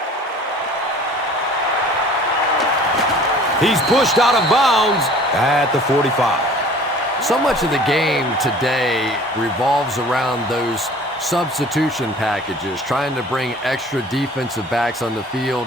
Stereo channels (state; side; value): normal; both; correlation 0.48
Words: He's pushed out of bounds at the 45. So much of the game today revolves around those substitution packages, trying to bring extra defensive backs on the